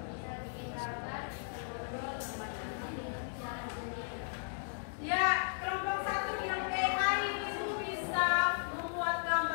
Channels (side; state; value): right; silent; digital silence